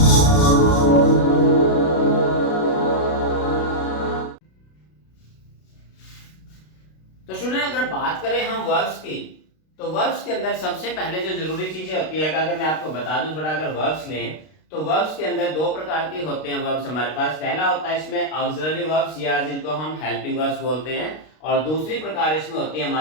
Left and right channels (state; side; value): late; right; 32 ms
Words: तो स्टूडेंट, अगर बात करें हम वर्ब्स की, तो वर्ब्स के अंदर सबसे पहले जो जरूरी चीजें होती है, अगर मैं आपको बता दूं थोड़ा, अगर वर्ब्स लें तो वर्ब्स के अंदर दो प्रकार के होते हैं वर्ब्स हमारे पास। पहला होता है इसमें ऑक्सिलरी वर्ब्स या जिनको हम हेल्पिंग वर्ब्स बोलते हैं, और दूसरी प्रकार इसमें होती है